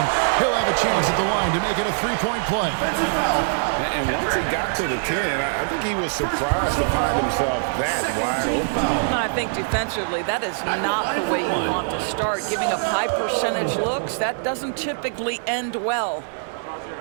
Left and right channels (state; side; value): silent; left; 63 dB below the other